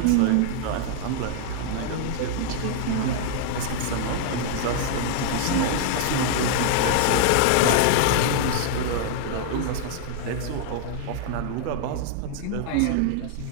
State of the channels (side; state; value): both; different; correlation 0.00